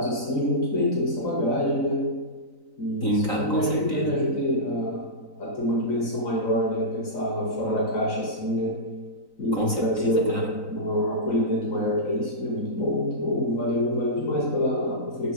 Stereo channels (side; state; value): right; late; 3.9 ms